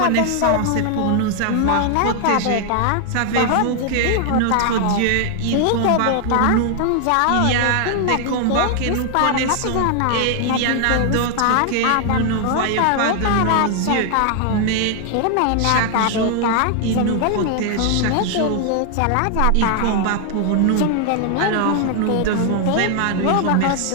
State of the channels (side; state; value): both; different; correlation 0.00